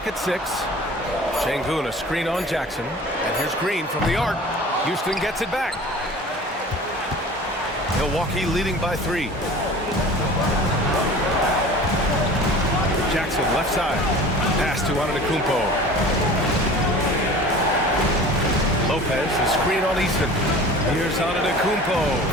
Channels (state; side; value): normal; both; correlation 0.41